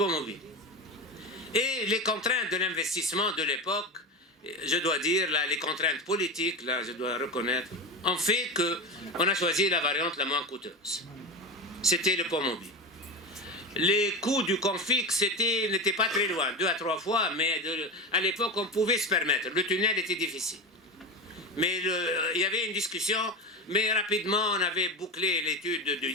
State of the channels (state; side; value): normal; both; correlation 0.22